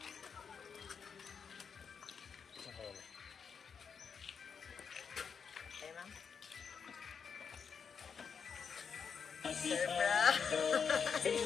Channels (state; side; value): quieter; right; 6.4 dB